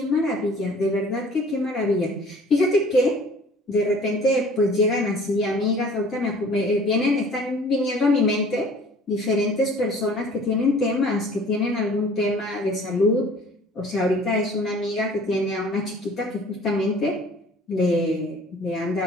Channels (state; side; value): normal; both; correlation 0.50